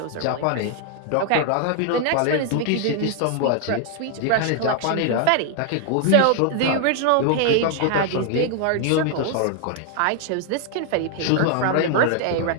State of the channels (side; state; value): both; different; correlation 0.00